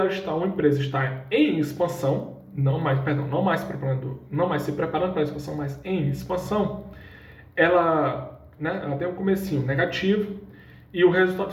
estar uma empresa estar em expansão, não mais se preparando para a expansão, mas em expansão, ela tem um comecinho negativo e o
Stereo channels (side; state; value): both; identical; correlation 1.00